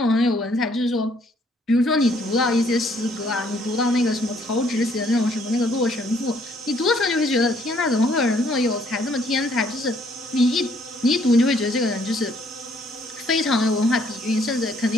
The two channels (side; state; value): both; normal; correlation 0.65